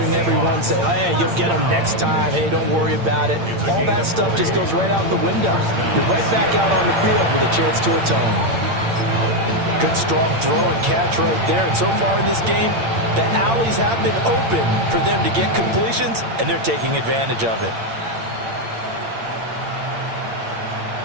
everyone say, hey, you'll get them next time. Hey, don't worry about it. All that stuff just goes right out the window. You're right back out on the field with a chance to atone. Good, strong throw and catch right there. And so far in this game, the alleys have been open for them to get completions, and they're taking advantage of it.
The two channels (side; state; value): left; late; 8.8 ms